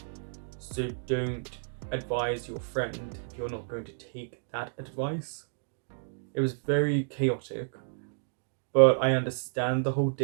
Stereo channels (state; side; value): silent; left; digital silence